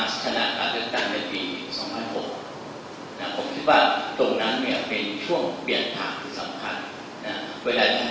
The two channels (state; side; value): identical; both; correlation 1.00